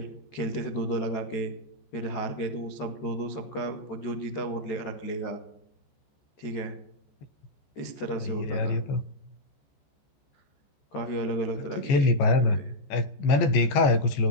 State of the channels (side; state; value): right; late; 14 ms